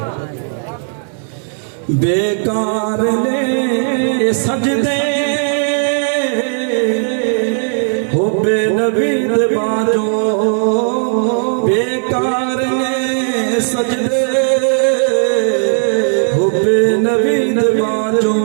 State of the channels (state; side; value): silent; left; digital silence